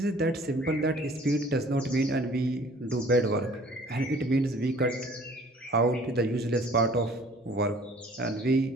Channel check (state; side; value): normal; both; correlation 0.52